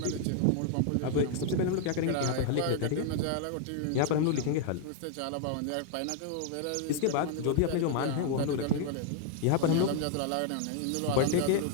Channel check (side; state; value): both; different; correlation 0.00